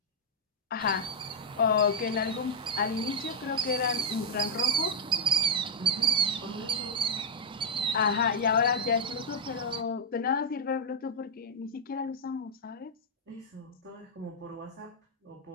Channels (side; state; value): both; normal; correlation -0.01